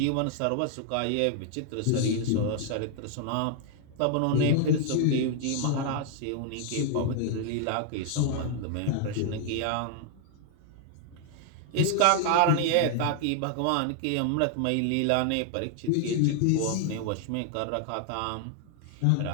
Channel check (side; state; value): both; different; correlation 0.00